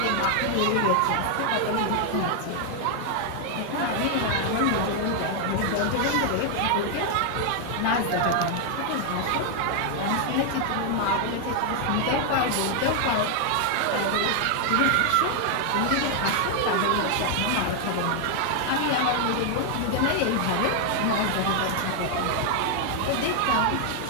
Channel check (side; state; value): both; different; correlation 0.00